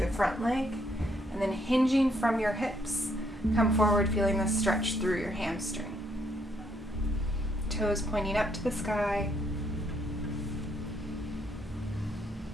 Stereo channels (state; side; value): normal; both; correlation 0.71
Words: front leg, and then hinging from your hips, come forward feeling the stretch through your hamstring. Toes pointing up to the sky.